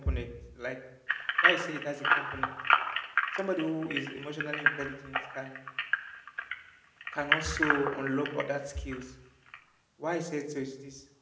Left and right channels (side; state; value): both; identical; correlation 1.00